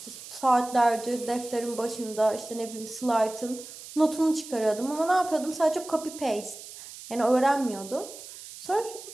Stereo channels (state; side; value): noise; right; hiss, 14 dB below the sound